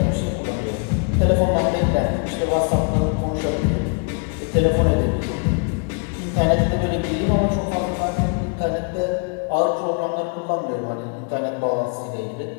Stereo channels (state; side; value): quieter; right; 37.9 dB